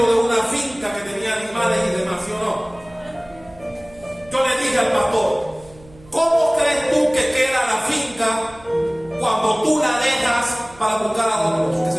de una finca que tenía animales y demás, ¿sí o no? Yo le dije al pastor, ¿cómo crees tú que queda la finca cuando tú la dejas para buscar a otros que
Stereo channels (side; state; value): right; noise; hum, 24 dB below the sound